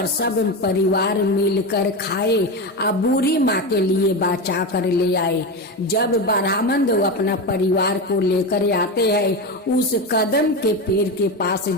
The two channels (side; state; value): both; normal; correlation 0.19